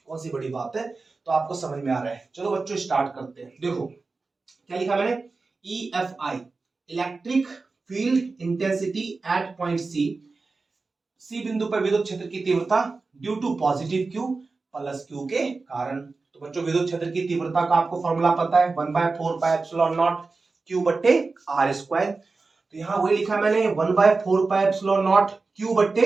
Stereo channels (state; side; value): quieter; left; 3.9 dB